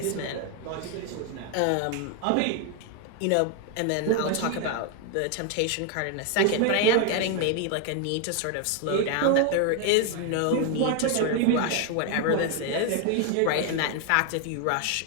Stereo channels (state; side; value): different; both; correlation 0.01